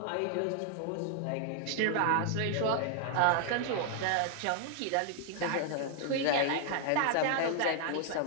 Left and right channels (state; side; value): different; both; correlation 0.00